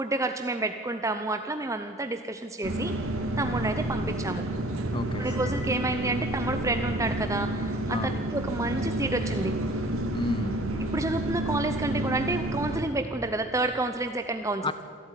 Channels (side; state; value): both; normal; correlation 0.50